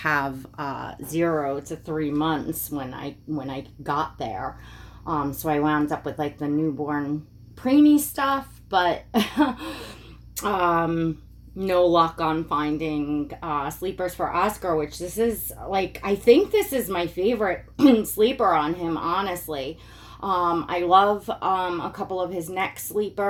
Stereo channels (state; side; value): identical; both; correlation 1.00